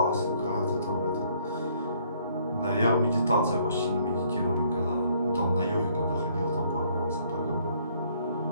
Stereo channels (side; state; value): both; inverted; correlation -0.64